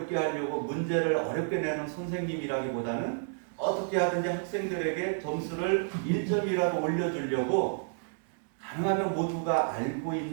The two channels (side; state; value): left; silent; 57 dB below the other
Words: 하려고 문제를 어렵게 내는 선생님이라기보다는 어떻게 하든지 학생들에게 점수를 1점이라도 올려주려고 가능하면 모두가 알고